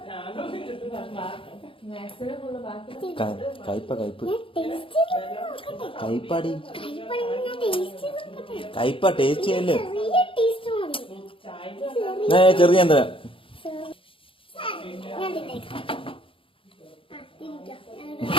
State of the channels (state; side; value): late; right; 0.26 ms